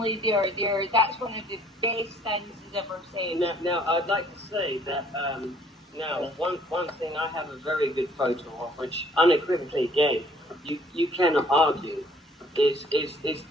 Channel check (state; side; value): normal; both; correlation 0.59